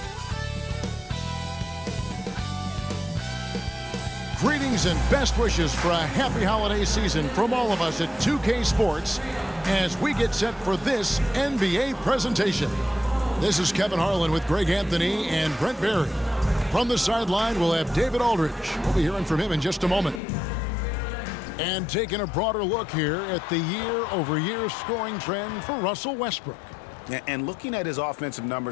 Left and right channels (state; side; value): drops out; right; at 20.2 s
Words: Greetings and best wishes for a happy holiday season from all of us at 2K Sports as we get set for this NBA presentation. This is Kevin Harlan with Greg Anthony and Brent Barry. From the sideline, we'll have David Aldridge. We'll be hearing from him in just a moment. And taking a broader look here at the year-over-year scoring trend for Russell Westbrook. And looking at his offensive